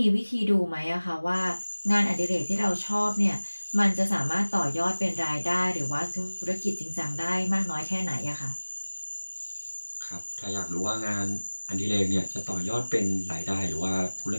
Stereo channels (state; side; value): inverted; both; correlation -1.00